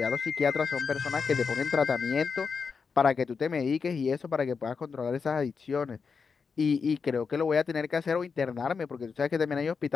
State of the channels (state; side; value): quieter; right; 5.4 dB